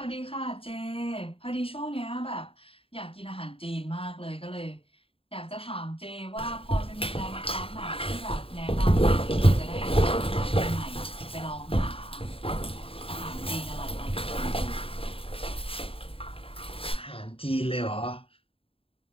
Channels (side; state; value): right; late; 0.27 ms